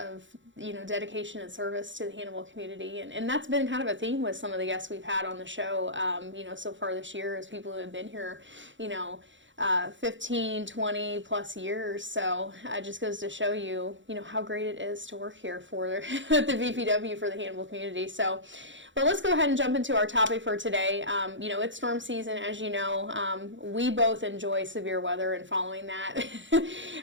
dedication and service to the Hannibal community, and that's been kind of a theme with some of the guests we've had on the show. So far this year, is people who have been here, 15, 20 plus years. So it just goes to show you, how great it is to work here for the BPW for the Hannibal community. So, well, let's go ahead and jump into our topic for today. It's storm season, as you know. We both enjoy severe weather and following that.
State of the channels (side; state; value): left; late; 0.55 ms